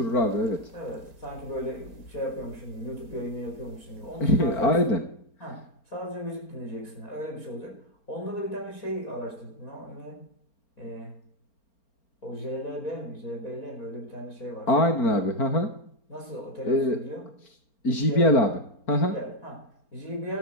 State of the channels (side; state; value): right; late; 4.4 ms